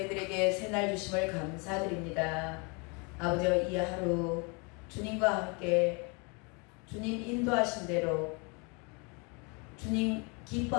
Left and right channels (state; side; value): quieter; right; 31.9 dB